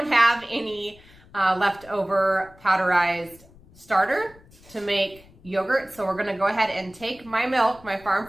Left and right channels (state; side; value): noise; left; rumble, 25 dB below the sound